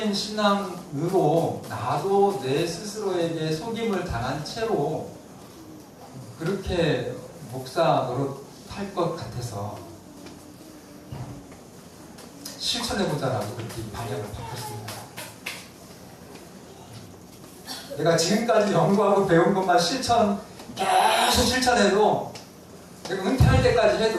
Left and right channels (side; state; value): both; identical; correlation 1.00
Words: 신앙으로 나도 내 스스로에게 속임을 당한 채로 그렇게 목사 노릇할 것 같아서 실천해보자라고 그렇게 방향을 바꿨습니다. 내가 지금까지 연구하고 배운 것만 계속 실천해도 내가 은퇴할 때까지